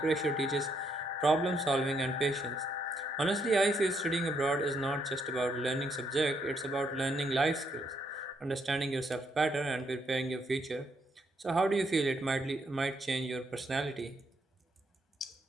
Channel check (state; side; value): normal; both; correlation 0.74